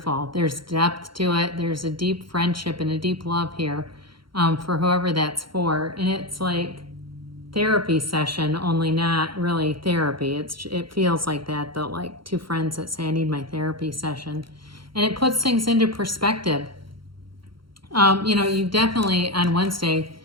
There's depth to it. There's a deep friendship and a deep love here for whoever that's for. And it's like therapy session, only not really therapy. It feels like that though, like two friends that say I need my therapy session. And it puts things into perspective. You know, you definitely on Wednesday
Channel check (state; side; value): late; left; 0.73 ms